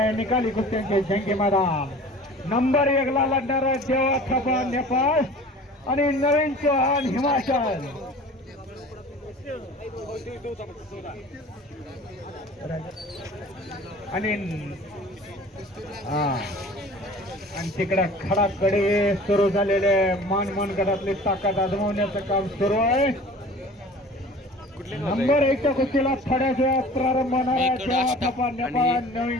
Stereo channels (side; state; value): both; normal; correlation 0.43